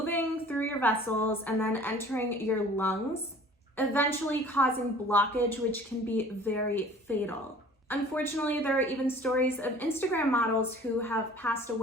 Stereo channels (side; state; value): both; normal; correlation 0.48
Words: through your vessels, and then entering your lungs, eventually causing blockage, which can be very fatal. Unfortunately, there are even stories of Instagram models who have passed